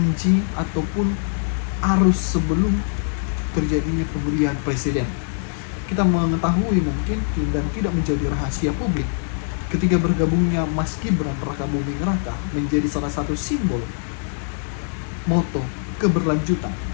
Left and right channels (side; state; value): right; silent; 59 dB below the other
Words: ataupun arus sebelum terjadinya pemilihan presiden. Kita mengetahui mungkin dan tidak menjadi rahasia publik, ketika bergabungnya Mas Gibran Rakabuming Raka menjadi salah satu simbol moto keberlanjutan,